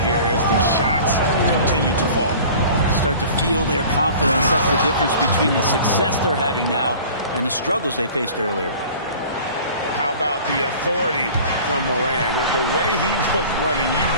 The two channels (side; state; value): both; inverted; correlation -0.44